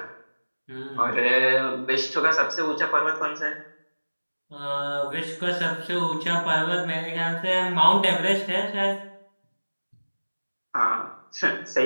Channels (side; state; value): both; inverted; correlation -1.00